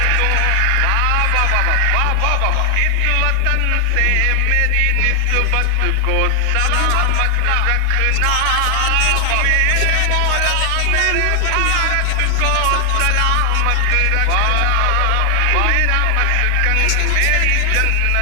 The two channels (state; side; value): different; both; correlation 0.00